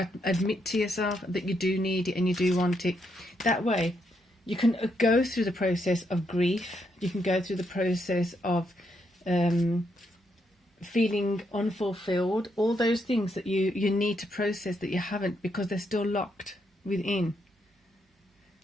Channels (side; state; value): both; normal; correlation 0.78